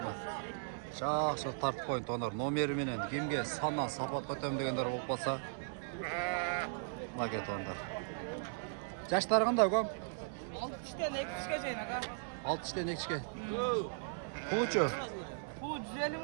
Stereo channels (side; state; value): left; silent; digital silence